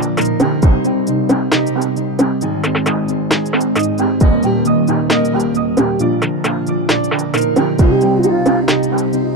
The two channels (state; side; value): normal; both; correlation 0.32